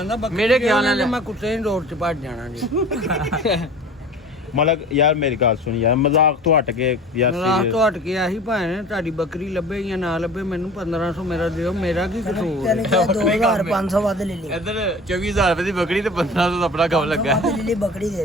ਬੱਕਰੀ ਮੇਰੇ ਖਿਆਲ ਨਾਲ ਮੈਂ ਕੁੱਤੇ ਦੀ ਰੋਡ 'ਚ ਭੱਜ ਜਾਣਾ ਜੀ ਮਤਲਬ ਯਾਰ ਮੇਰੀ ਗੱਲ ਸੁਣ ਯਾਰ ਮਜ਼ਾਕ ਤੋਂ ਹਟ ਕੇ ਯਾਰ ਰਾਤ serious। ਤੋਂ ਹਟ ਕੇ ਆਹੀ ਭਾਣੇ ਤੁਹਾਡੀ ਬੱਕਰੀ ਲੱਭੇ ਜਾਂ ਨਾ ਲੱਭੇ ਮੈਨੂੰ 1500 ਮੇਰਾ ਦਿਓ ਮੇਰਾ ਕੀ ਕਸੂਰ ਤੈਨੂੰ ਕਿਹਾ 2500 ਵੱਧ ਲੈ ਲਈ ਇੱਧਰ 24000 ਰੁਪਏ ਦੀ ਬੱਕਰੀ ਤੇ 1500 ਦਾ ਆਪਣਾ ਕੰਮ ਲੱਗਾ ਵੱਧ ਲੈ ਲਈ ਬੱਕਰੀ ਦੇ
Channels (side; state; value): both; normal; correlation 0.41